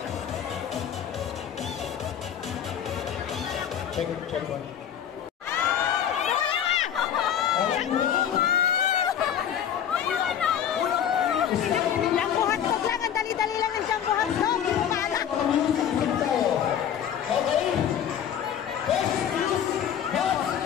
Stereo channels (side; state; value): right; quieter; 9.2 dB